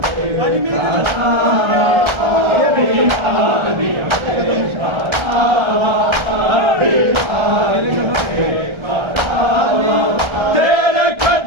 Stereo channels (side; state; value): left; late; 1.3 ms